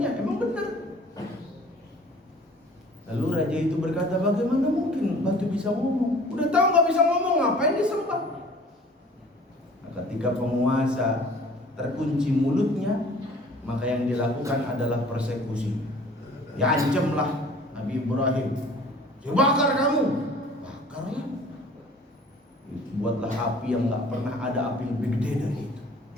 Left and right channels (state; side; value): normal; both; correlation 0.49